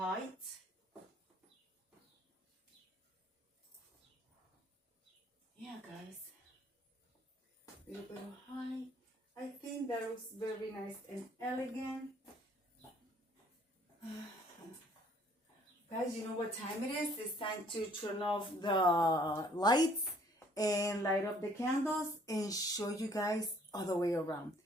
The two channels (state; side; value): normal; both; correlation 0.60